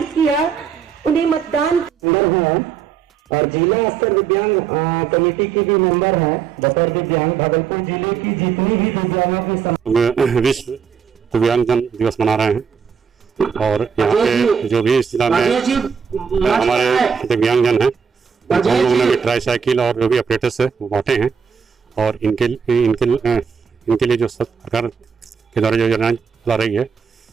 किया, उन्हें मतदान है और जिला स्तर दिव्यांग कमेटी की भी मेंबर है। बतौर दिव्यांग भागलपुर जिले की जितनी भी दिव्यांगों की विश्व दिव्यांगजन दिवस मना रहे हैं और यहाँ पे जो भी इस जिला में हमारे दिव्यांगजन हैं उन लोगों ने भी ट्राई साइकिल और जो भी ऑपरेटर्स है वो बांटे हैं और इनके लिए जो सरकार के द्वारा जो योजना चला रही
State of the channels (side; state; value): left; quieter; 6.8 dB